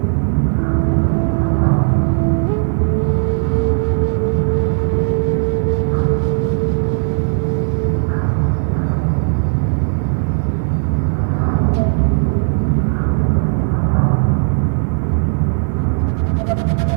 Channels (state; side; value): silent; left; 69 dB below the other